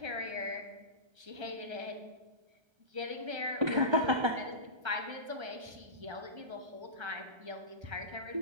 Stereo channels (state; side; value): late; left; 1.3 ms